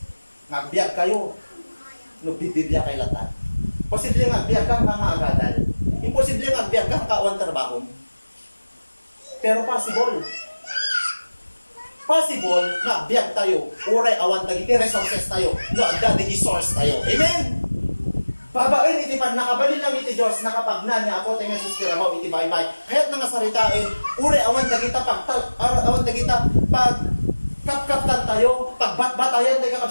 biyag kayo. No, bibibya kay latan. Posible nga biyag kang nga agadal. Imposible nga biyag kang kawan trabaho. Pero possible. Possible nga biyag tayo. Uray awan dagiti resources tayo. No, dagiti source tayo. Amen? Babain iti pan nakabalin lang iti Diyos nakapagnan niya ako ting Jesus tirabaw iti baybay. Kaya't nga saritain, uri awan dagita awan dagita pag kapkaptan tayo, pagbatbatayan tayo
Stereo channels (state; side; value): inverted; both; correlation -1.00